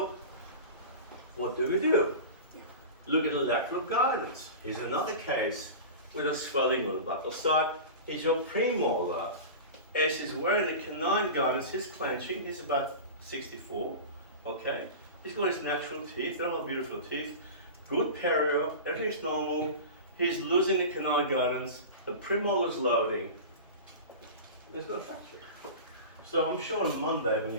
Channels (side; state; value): both; inverted; correlation -0.30